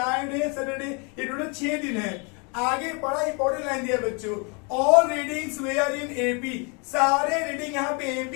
Saturday, ये टोटल 6 दिन है। आगे बड़ा इंपॉर्टेंट लाइन दिया बच्चों, all readings were in AP. सारे रीडिंग यहाँ पे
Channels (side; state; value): right; quieter; 33.4 dB